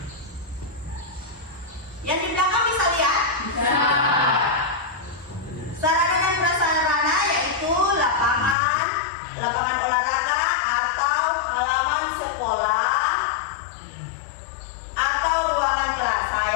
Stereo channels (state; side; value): drops out; right; at 8.6 s